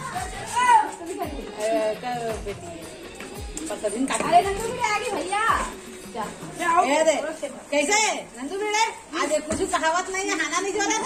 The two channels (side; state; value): both; identical; correlation 1.00